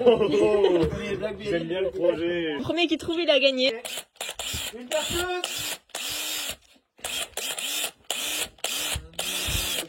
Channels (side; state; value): both; identical; correlation 1.00